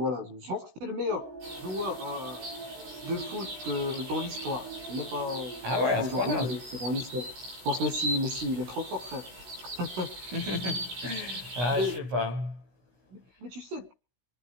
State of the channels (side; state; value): left; late; 16 ms